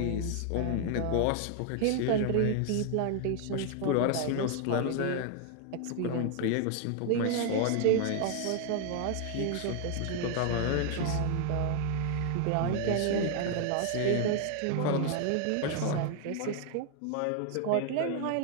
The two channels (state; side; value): different; both; correlation 0.00